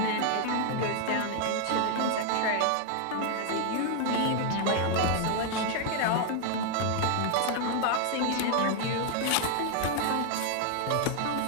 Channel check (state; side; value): different; both; correlation 0.00